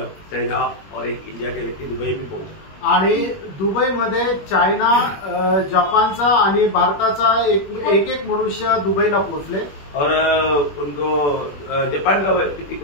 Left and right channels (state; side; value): late; right; 21 ms